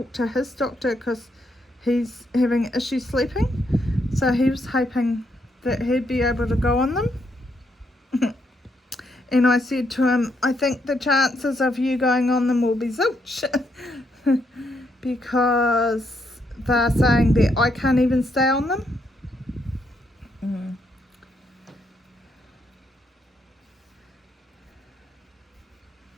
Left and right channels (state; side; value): normal; both; correlation 0.76